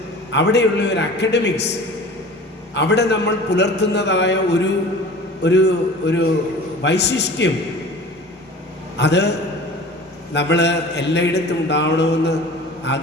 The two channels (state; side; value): normal; both; correlation 0.41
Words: അവിടെയുള്ള ഒരു അക്കാഡമിക്സ്, അവിടെ നമ്മൾ പുലർത്തുന്നതായ ഒരു വൈശിഷ്ട്യം, അത് നമ്മൾ എല്ലായിടത്തും ഉണ്ടാവണമെന്ന്